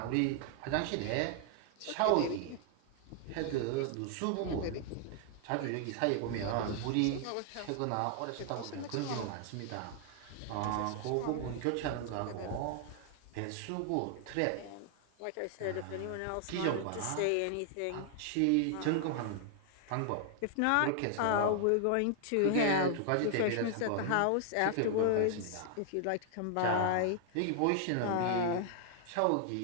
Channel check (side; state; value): both; different; correlation 0.00